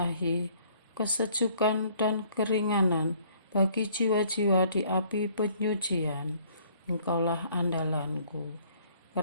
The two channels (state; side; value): inverted; both; correlation -0.60